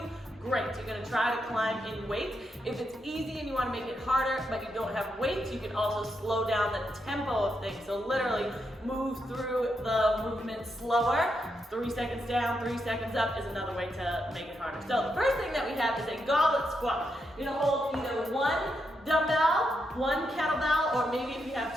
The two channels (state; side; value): normal; both; correlation 0.82